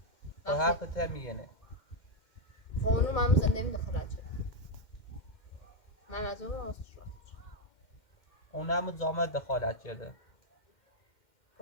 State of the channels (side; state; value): right; late; 2.1 ms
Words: و حرف ته میگنه. خب اونو من زنده می دخلت شد. من از اون راستش رفتار. اون هم زامت دخالت شده.